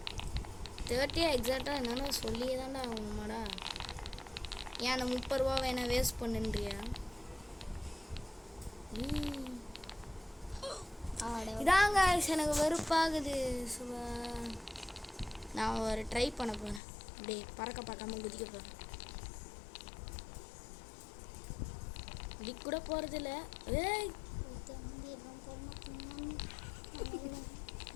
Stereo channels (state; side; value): drops out; right; at 16.8 s